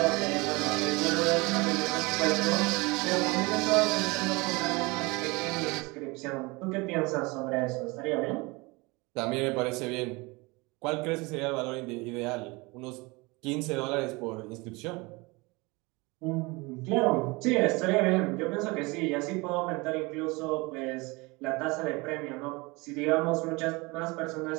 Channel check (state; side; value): quieter; left; 25.2 dB